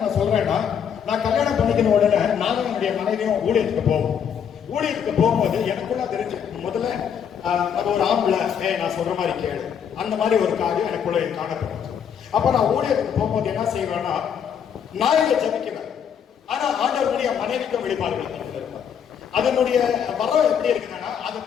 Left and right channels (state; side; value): quieter; right; 8.0 dB